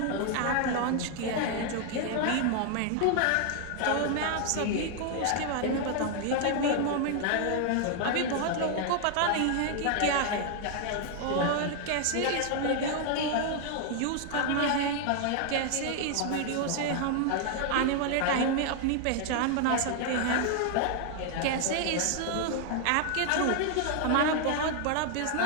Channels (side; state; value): both; different; correlation 0.00